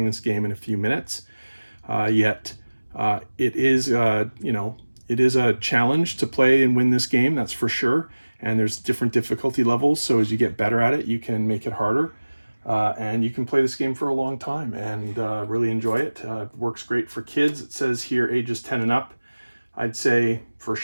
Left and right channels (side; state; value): both; inverted; correlation -1.00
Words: this game in a few minutes. Yet it is, it is a challenge to play and win this game, that's for sure. And there's different difficulty levels, so as you get better at it, you can make it harder. And you can play this game for a long time and really enjoy it. Works great for kids. It says here ages 10 and up. I'd say for